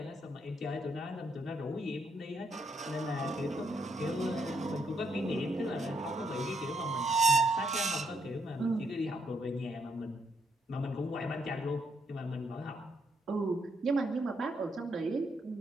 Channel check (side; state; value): both; normal; correlation 0.75